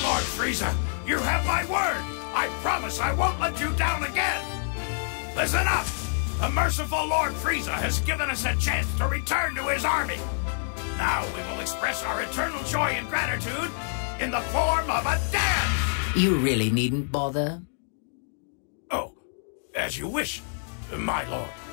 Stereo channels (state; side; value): silent; right; digital silence